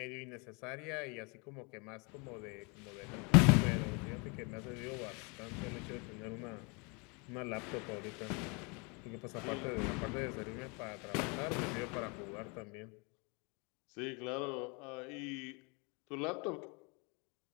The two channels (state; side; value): quieter; right; 31.3 dB